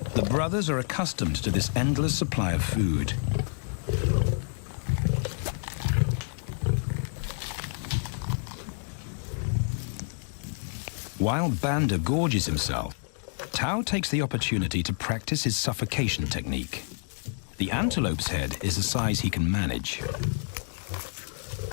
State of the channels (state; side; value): silent; right; digital silence